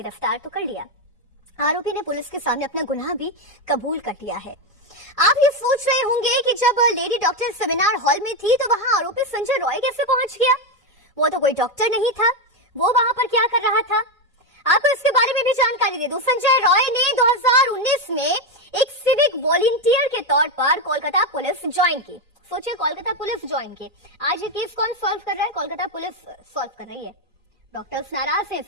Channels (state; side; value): normal; both; correlation 0.08